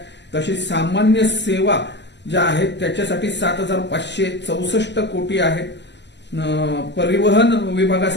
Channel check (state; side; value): late; right; 0.51 ms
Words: तशी सामान्य सेवा ज्या आहेत त्याच्यासाठी 7,564 कोटी आहेत. परिवहन